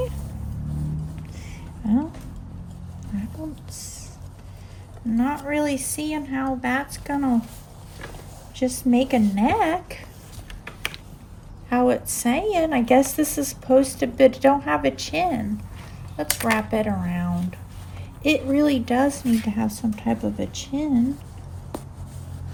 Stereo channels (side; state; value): both; identical; correlation 1.00